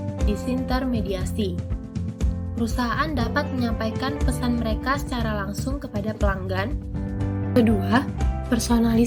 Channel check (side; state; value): both; identical; correlation 1.00